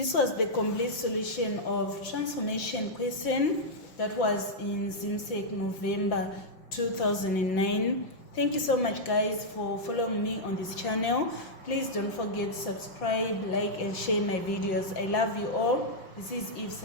was the complete solution of transformation question that was in ZIMSEC November 2009. Thank you so much guys for following me on this channel. Please don't forget to subscribe, like and share my videos. I love you all. This is Eve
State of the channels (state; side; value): late; right; 5.5 ms